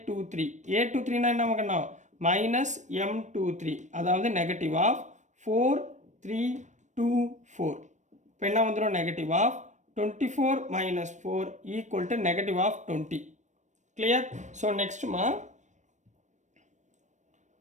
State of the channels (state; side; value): late; left; 0.35 ms